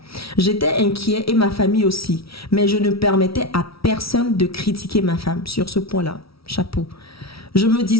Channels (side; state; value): right; late; 0.75 ms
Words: J'étais inquiet et ma famille aussi, mais je ne permettais à personne de critiquer ma femme sur ce point-là. Chapeau. Je me